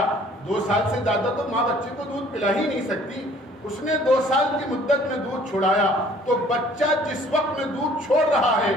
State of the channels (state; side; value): normal; both; correlation 0.55